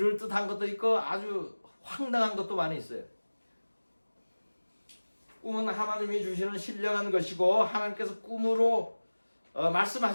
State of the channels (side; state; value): both; inverted; correlation -1.00